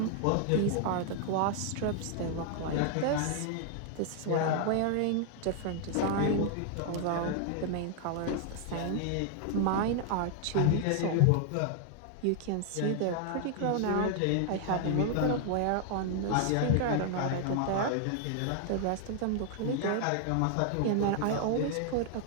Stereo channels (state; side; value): different; both; correlation 0.00